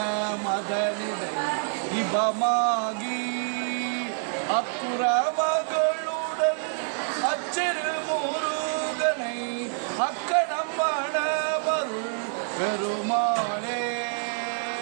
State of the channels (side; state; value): left; silent; 60 dB below the other